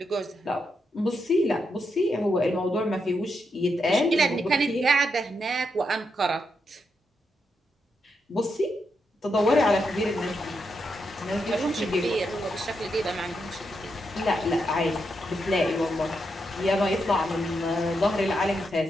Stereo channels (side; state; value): both; normal; correlation 0.83